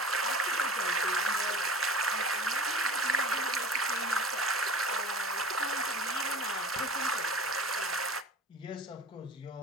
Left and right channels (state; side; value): normal; both; correlation 0.39